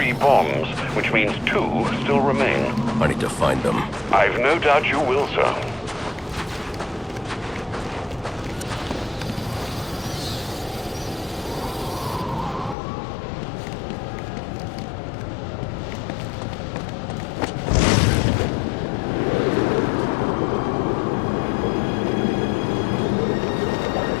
bombs, which means 2 still remain. I need to find them. I've no doubt you will, sir.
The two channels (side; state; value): right; drops out; at 12.8 s